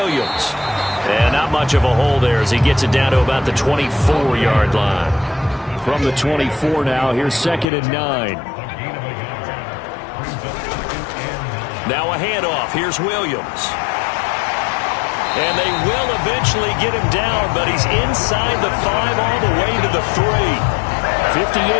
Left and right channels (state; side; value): drops out; right; at 7.7 s